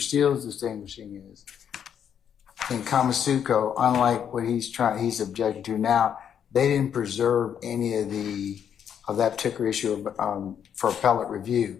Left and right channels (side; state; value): right; quieter; 8.6 dB